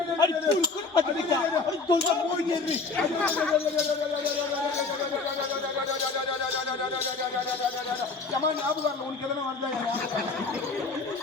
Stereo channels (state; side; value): quieter; right; 4.2 dB